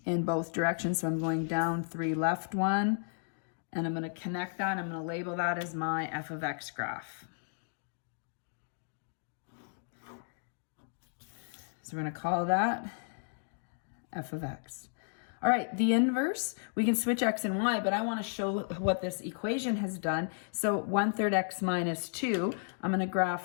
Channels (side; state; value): right; silent; digital silence